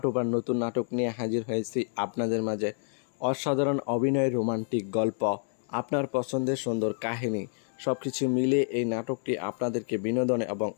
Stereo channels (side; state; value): right; silent; digital silence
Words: টুপার নতুন নাটক নিয়ে হাজির হয়েছি আপনাদের মাঝে। অসাধারণ অভিনয়, রোমান্টিক গল্প, আপনার পছন্দের সুন্দর কাহিনী সব কিছু মিলিয়ে এই নাটকটি আপনাদেরকে বিনোদন এবং